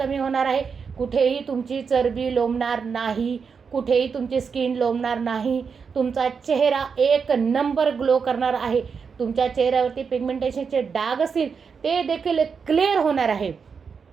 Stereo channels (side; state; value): left; quieter; 5.8 dB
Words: होणार आहे. कुठेही तुमची चरबी लोंबणार नाही, कुठेही तुमची स्किन लोंबणार नाही. तुमचा चेहरा एक नंबर ग्लो करणार आहे. तुमच्या चेहऱ्यावरती पिगमेंटेशनचे डाग असतील ते देखील क्लिअर होणार आहे.